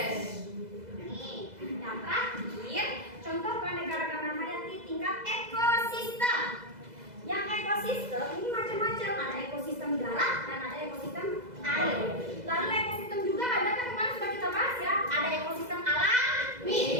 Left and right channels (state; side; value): late; left; 2.0 ms